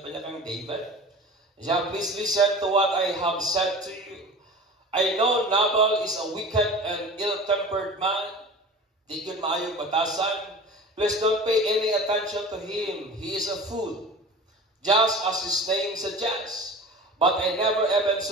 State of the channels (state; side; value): normal; both; correlation 0.37